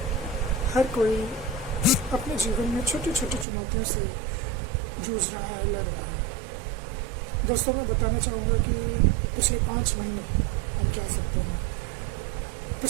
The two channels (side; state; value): left; drops out; at 3.5 s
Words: हर कोई अपने जीवन में छोटी छोटी चुनौतियों से जूझ रहा है, लड़ रहा है। दोस्तों, मैं बताना चाहूँगा कि पिछले 5 महीने हम कह सकते हैं,